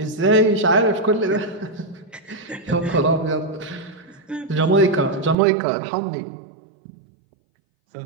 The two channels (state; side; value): drops out; left; at 5.4 s